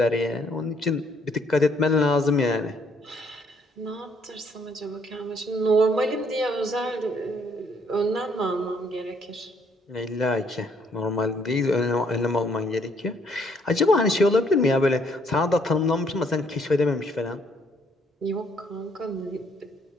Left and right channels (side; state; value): both; normal; correlation 0.67